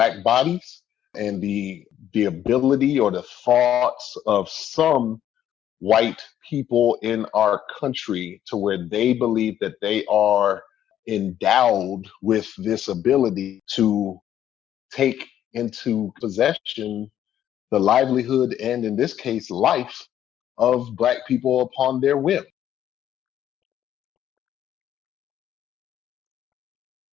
bodies and the ability or the thoughts of some white people in our country to where they believe that they are endowed with this ability to take into possession the livelihood and, in this case, life of black people upon their whim. No, I really appreciate it, and so much I want to explore in just that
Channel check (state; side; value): quieter; right; 11.0 dB